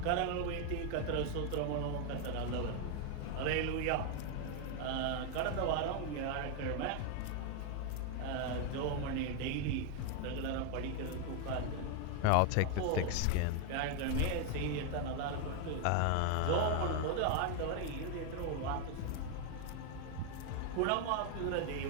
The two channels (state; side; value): different; both; correlation 0.00